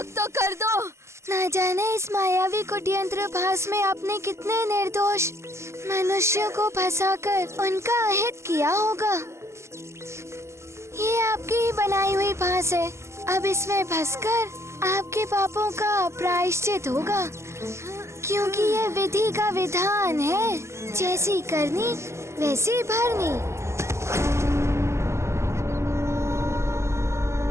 तो कर दो। न जाने इस मायावी कुटयंत्र भास में आपने कितने निर्दोष मनुष्यों को फंसाकर उनका अहित किया होगा। ये आपकी ही बनाई हुई फांस है। अब इसमें फंसकर आपके पापों का प्रायश्चित होगा, क्योंकि ये विधि का विधान है, जैसी करनी वैसी भरनी।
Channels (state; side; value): late; left; 0.13 ms